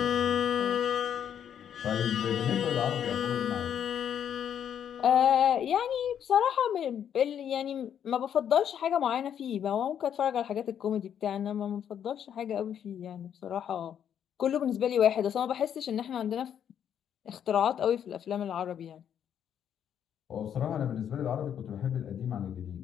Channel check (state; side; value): quieter; right; 9.1 dB